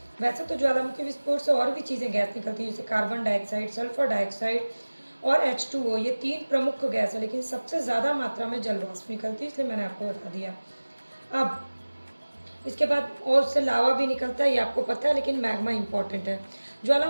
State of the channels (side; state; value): both; inverted; correlation -1.00